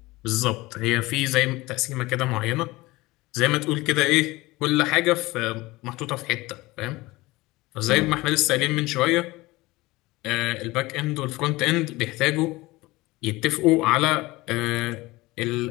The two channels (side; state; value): right; quieter; 20.6 dB